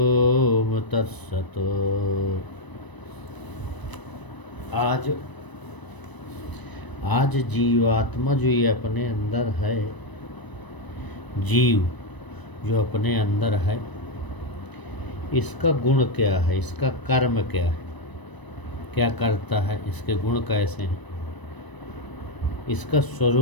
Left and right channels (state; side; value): late; right; 1.0 ms